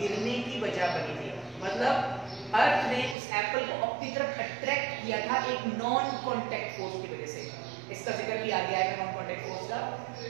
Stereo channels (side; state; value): left; drops out; at 3.2 s